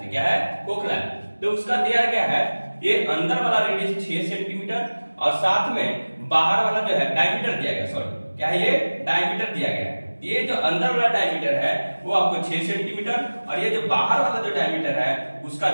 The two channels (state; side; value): inverted; both; correlation -1.00